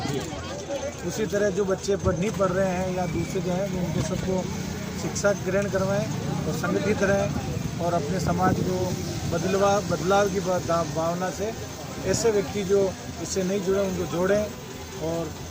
उसी तरह जो बच्चे नहीं पढ़ रहे हैं या दूसरे जो हैं, उनको सबको शिक्षा ग्रहण करवाएं और संगठित रहें, और अपने समाज को बदलाव की भावना से ऐसे व्यक्ति जो इससे नहीं जुड़े उनको जोड़ें। और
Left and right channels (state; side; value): identical; both; correlation 1.00